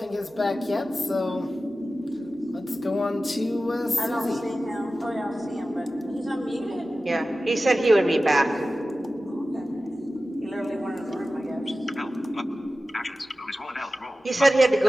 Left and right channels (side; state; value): both; normal; correlation 0.95